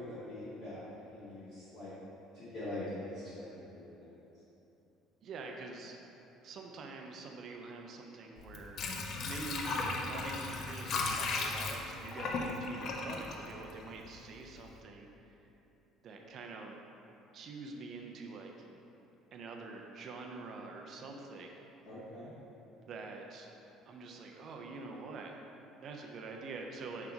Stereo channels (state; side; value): normal; both; correlation 0.55